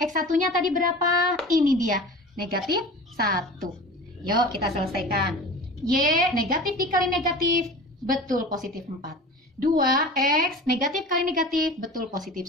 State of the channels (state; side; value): normal; both; correlation 0.36